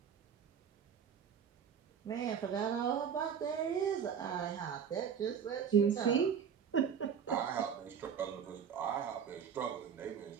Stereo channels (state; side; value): quieter; left; 7.5 dB